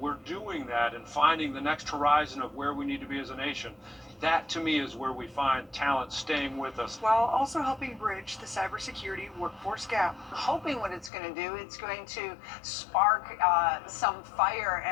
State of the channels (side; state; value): right; drops out; at 11.1 s